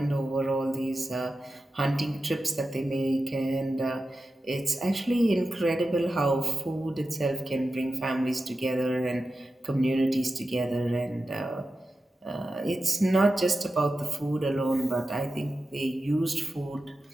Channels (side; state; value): both; normal; correlation 0.92